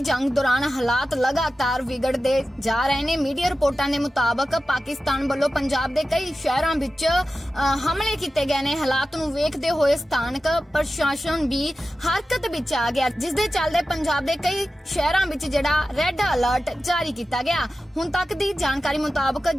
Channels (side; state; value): both; normal; correlation 0.93